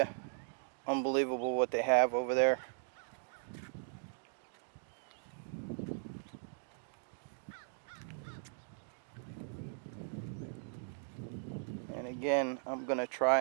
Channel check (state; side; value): silent; left; digital silence